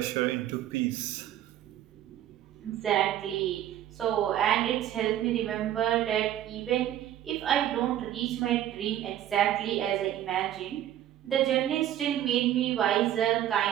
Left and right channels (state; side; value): quieter; left; 11.9 dB